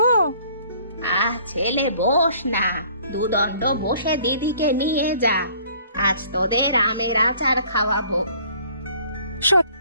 ছেলে বস না, দুদণ্ড বসে দিদিকে নিয়ে যা, আজ তোদের আমের আচার খাওয়াবো।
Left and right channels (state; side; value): inverted; both; correlation -0.56